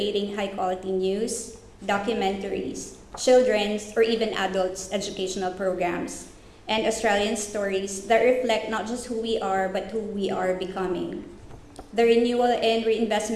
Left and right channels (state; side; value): identical; both; correlation 1.00